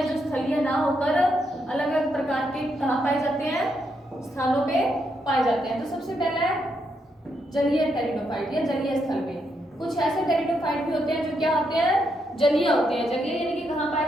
जो स्थलीय ना होकर अलग अलग प्रकार के कहाँ पाए जाते हैं, स्थानों पे पाए जाते हैं। तो सबसे पहला है जलीय टेरिडोफाइट या जलीय स्थल पे। कुछ ऐसे टेरिडोफाइट भी होते हैं जो क्या होते हैं, जलीय होते हैं। जलीय यानी कि कहाँ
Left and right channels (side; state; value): both; normal; correlation 0.79